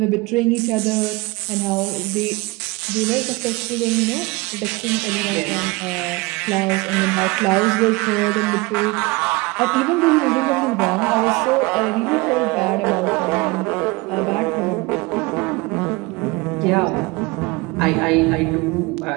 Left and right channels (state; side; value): quieter; left; 24.2 dB